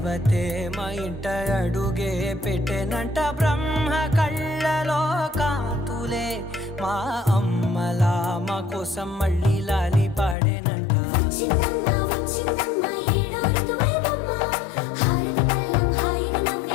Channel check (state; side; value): drops out; right; at 10.4 s